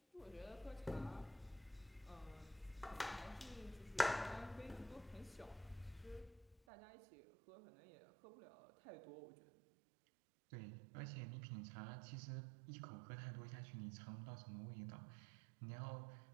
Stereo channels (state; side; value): drops out; left; at 6.6 s